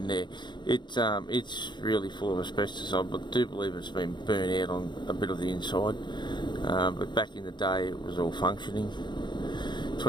there. It's really full of asbestos. I do believe it's been burnt out on a bit of the inside, but back in the day it was all functioning.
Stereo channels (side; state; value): right; late; 0.22 ms